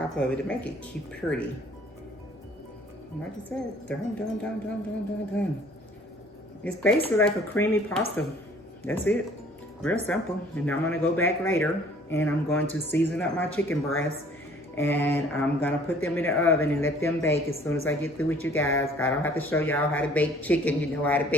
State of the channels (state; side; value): normal; both; correlation 0.55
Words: of it to make it keep pretty. Like I said, done. It's basically like a creamy pasta. That's it. Real simple. And now I'm gonna go back later and I'm going to season up my chicken breasts, and I'm gonna put them in the oven and let them bake as soon as I get through with you guys. I don't have to show y'all how to bake chicken. You know how to